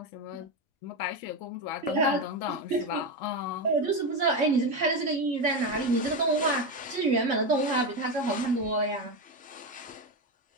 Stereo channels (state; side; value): normal; both; correlation 0.14